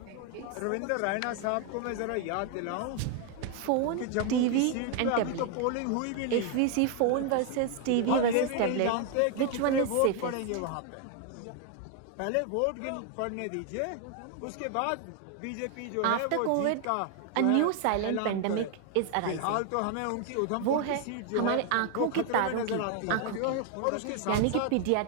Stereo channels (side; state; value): both; different; correlation 0.01